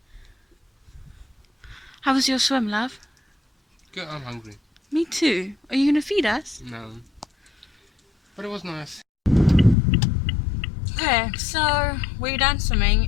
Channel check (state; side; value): drops out; right; at 9.8 s